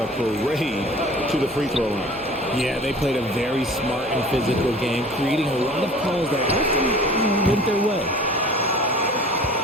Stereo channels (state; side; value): normal; both; correlation 0.45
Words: parade to the free throw line. Yeah, they played a very smart and physical game, creating a lot of calls that often went their way.